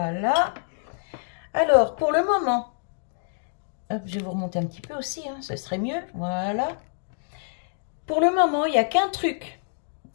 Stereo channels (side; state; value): right; silent; digital silence